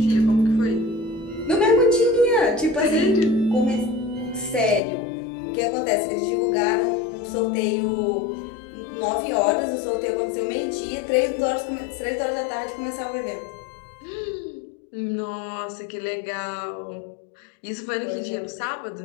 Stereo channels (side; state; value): right; drops out; at 4.8 s